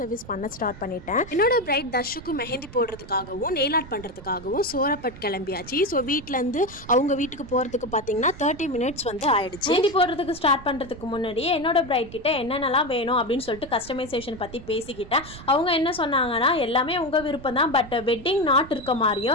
சர்வீஸ் பண்ண ஸ்டார்ட் பண்ணிட்டேன். என்னோட பிரைட் தர்ஷுக்கு மெஹந்தி போடுறதுக்காகவும் நெயில் ஆர்ட் பண்ணுறதுக்காகவும் சோரப்பட் கிளம்பியாச்சு. ஸோ வீட்டிலேருந்து அவங்க வீட்டுக்கு போகிறதுக்கு பார்த்தீங்கன்னா 30 minutes வந்து ஆயிடுச்சு. மெஹந்தி போடுறதுக்கு ஸ்டார்ட் பண்ணுறதுக்கு முன்னாடியே என்னோட பிரைட் கிட்ட என்னென்னலாம் வேணும் அப்படின்னு சொல்லிட்டு கஸ்டமைசேஷன் பற்றி பேசிக்கிட்டேன். அவங்க என்ன சொன்னாங்கன்னா எல்லாமே உங்கள் விருப்பம் தான், பட் வெட்டிங் நாட் இருக்க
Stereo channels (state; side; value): noise; right; rumble, 16 dB below the sound